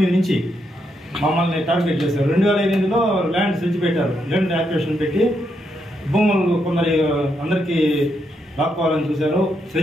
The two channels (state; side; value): normal; both; correlation 0.80